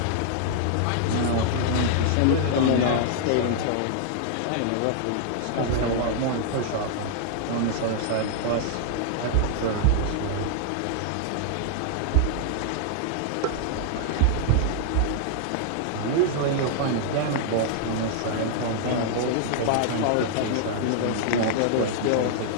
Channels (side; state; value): both; different; correlation -0.01